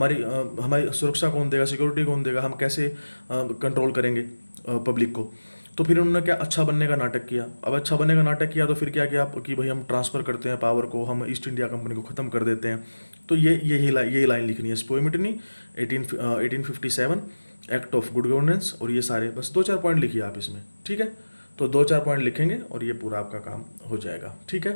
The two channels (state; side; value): inverted; both; correlation -1.00